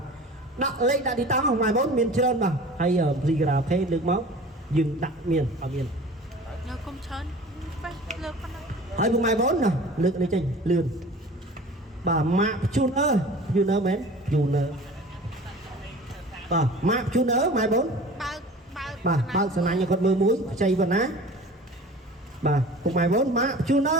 đặt lên đặt đi tăng ở ngoài 4 miền trơn mà hay ở gì cà phê được máu dừng đặt miền ở miền នៅគុំច្រើនលើកប៉ុណ្ណឹង ហើយពុកម៉ែបងណាលើកនេះចេញលឿនបាទម៉ាក់ជូនអើយូនអើមែនយូនអើបាទម៉ាក់ជូនអើម៉ែបង បើក បាទបើកសំណាញ់ឲ្យគាត់មើលមួយខ្ចីប៉ុណ្ណាបាទពុកម៉ែបងម៉ាក់ជូនអើ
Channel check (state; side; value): normal; both; correlation 0.41